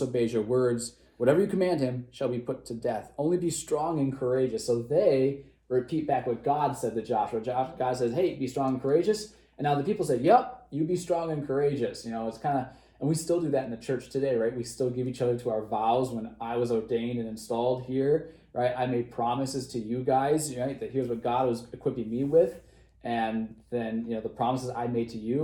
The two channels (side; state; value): both; identical; correlation 1.00